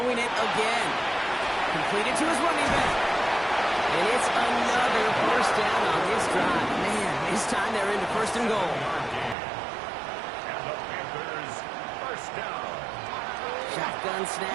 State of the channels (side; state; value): left; drops out; at 9.3 s